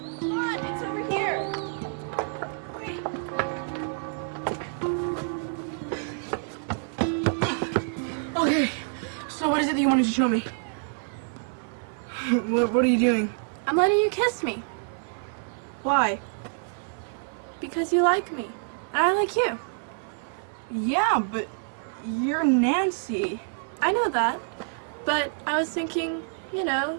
To show me. What are you doing? I'm letting you kiss me. Why? Because you like me. And I like you. Yeah, but you're Nancy. I know that. But I was thinking, you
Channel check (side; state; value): left; silent; 58 dB below the other